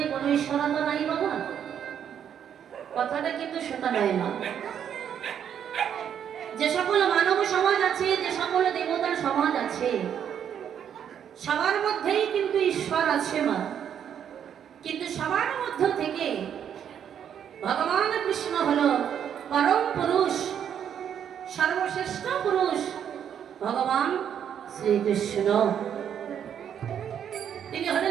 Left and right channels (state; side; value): quieter; left; 8.8 dB